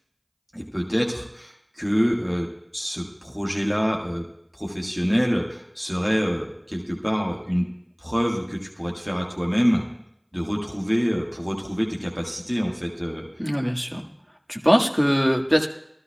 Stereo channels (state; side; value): identical; both; correlation 1.00